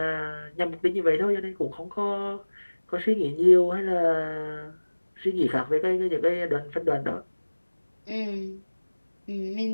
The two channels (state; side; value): inverted; both; correlation -1.00